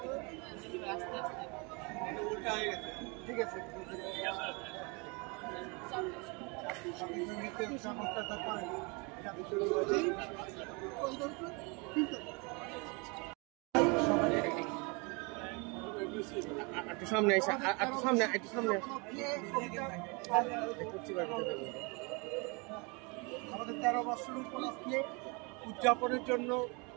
ঠিক আছে একটু সামনে এসে একটু সামনে আমাদের 13 বছর উপলক্ষে উদযাপনের জন্য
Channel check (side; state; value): left; quieter; 30.3 dB